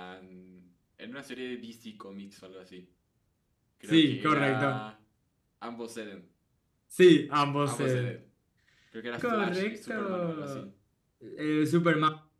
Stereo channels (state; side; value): identical; both; correlation 1.00